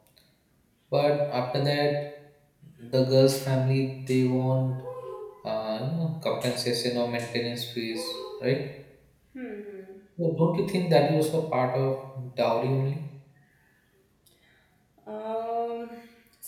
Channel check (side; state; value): both; identical; correlation 1.00